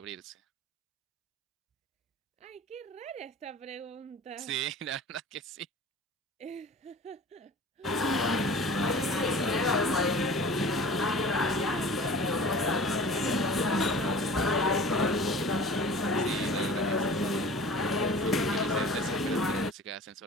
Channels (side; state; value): both; normal; correlation 0.42